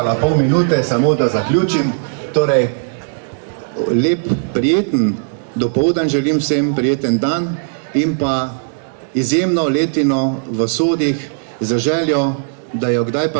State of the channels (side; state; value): left; silent; 68 dB below the other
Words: pol minute, samo da zaključim. Torej, lep, prijeten dopoldan želim vsem, prijeten dan in pa izjemno letino v sodih za željo, da jo kdaj